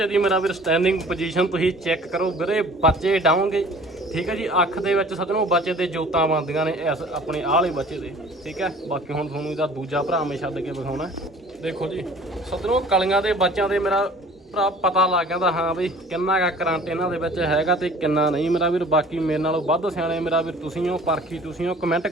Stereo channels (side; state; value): both; normal; correlation 0.49